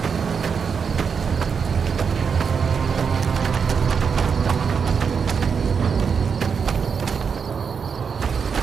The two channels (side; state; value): left; quieter; 6.2 dB